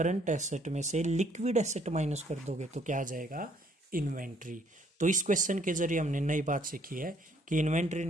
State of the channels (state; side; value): normal; both; correlation 0.64